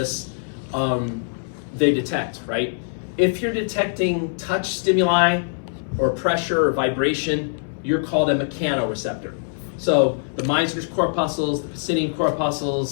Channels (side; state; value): right; silent; 63 dB below the other